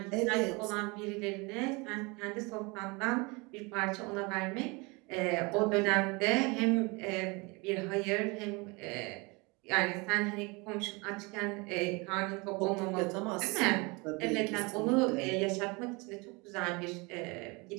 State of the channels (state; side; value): quieter; left; 27.3 dB